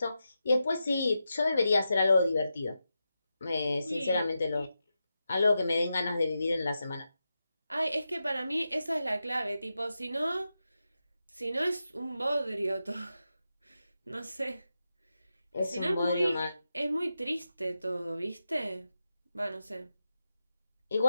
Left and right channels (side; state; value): both; inverted; correlation -0.89